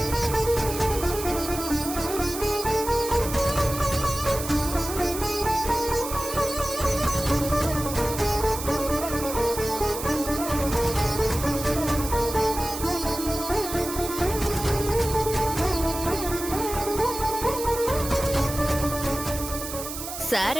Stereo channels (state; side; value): noise; right; hiss, 8 dB below the sound